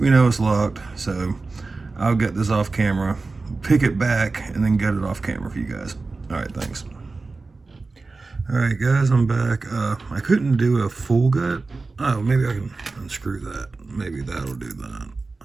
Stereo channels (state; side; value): quieter; left; 3.8 dB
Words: know it's locked. So I'll get this off camera, pick it back, and then gut it off camera for you guys. All right, thanks. All right, guys, I'm back. I couldn't do a full gut. Oh, maybe I can unscrew that. Maybe that'll do that.